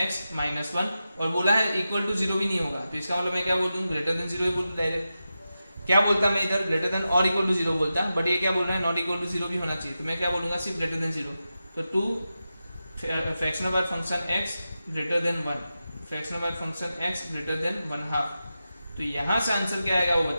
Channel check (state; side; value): inverted; both; correlation -0.91